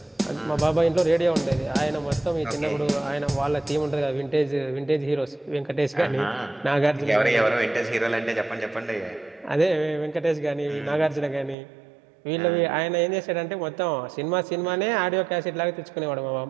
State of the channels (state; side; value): drops out; left; at 11.6 s